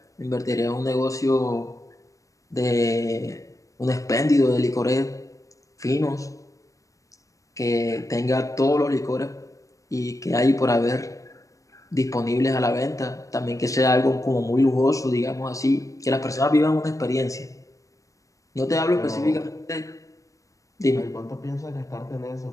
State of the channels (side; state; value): right; late; 0.16 ms